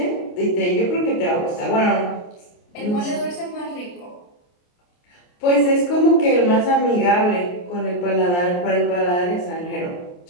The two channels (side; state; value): right; late; 28 ms